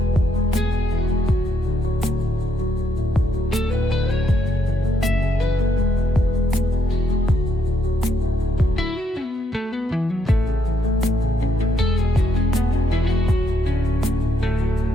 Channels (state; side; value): normal; both; correlation 0.76